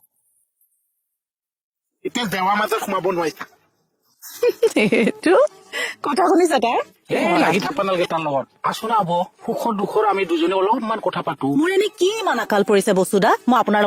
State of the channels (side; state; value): both; identical; correlation 1.00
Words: এতিয়া জেৱাৰ মাজত সোমাব নোৱাৰিছা এইটো কথা শুনিছা তাই লাগি থাকবা নালাগে তাৰ লগত আছো না হব সুখৰ দুখৰ আমি দুজনে অলপমান কথা পাতো মোৰ এনে কি ইমান আকাল পৰিছে বস্তুদা মই আপোনাৰ